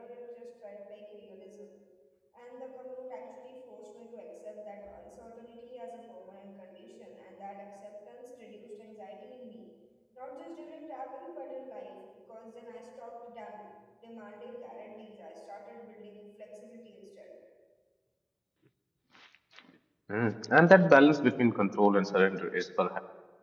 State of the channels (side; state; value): both; identical; correlation 1.00